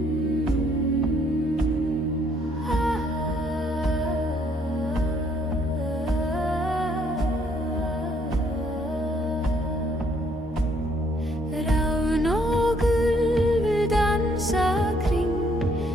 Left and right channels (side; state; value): both; normal; correlation 0.67